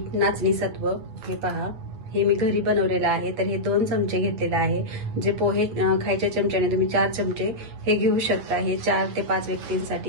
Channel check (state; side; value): late; left; 8.7 ms